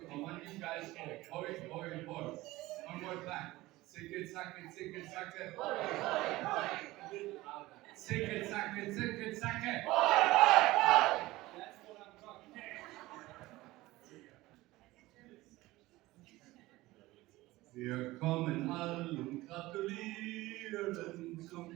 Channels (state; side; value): quieter; left; 18.7 dB